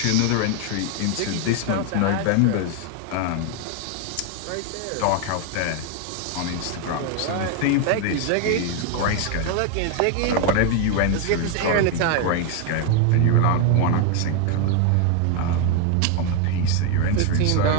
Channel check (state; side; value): different; both; correlation 0.01